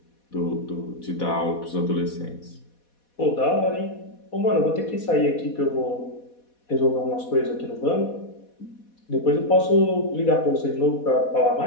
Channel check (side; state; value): right; late; 4.1 ms